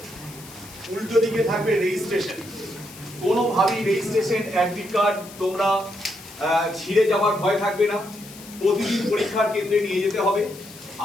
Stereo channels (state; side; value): noise; left; hiss, 18 dB below the sound